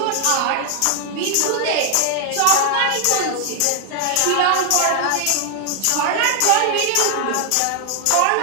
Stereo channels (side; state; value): both; different; correlation 0.00